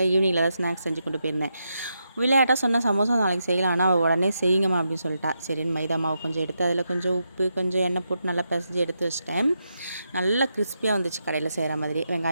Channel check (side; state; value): both; inverted; correlation -0.84